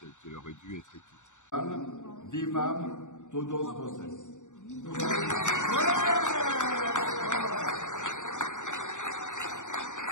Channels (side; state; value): right; late; 0.85 ms